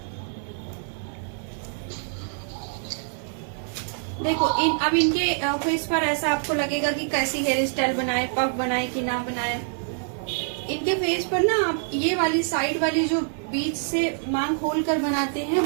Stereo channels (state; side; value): silent; left; 57 dB below the other